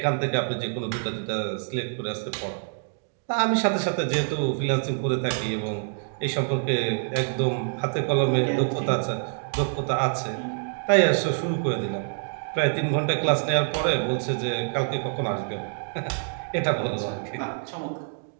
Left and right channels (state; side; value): silent; left; digital silence